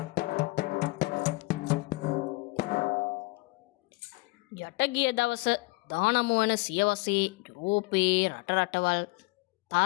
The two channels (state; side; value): quieter; right; 24.4 dB